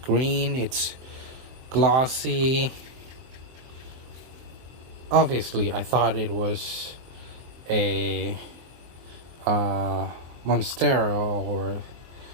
green, it's glossy. Obviously, I thought it was a Monstera or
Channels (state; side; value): late; left; 23 ms